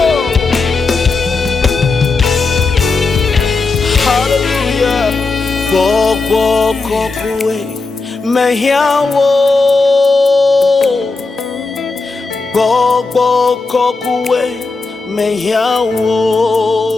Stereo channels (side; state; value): right; quieter; 3.9 dB